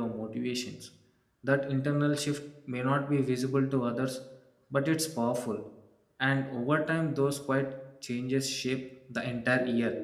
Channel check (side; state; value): both; identical; correlation 1.00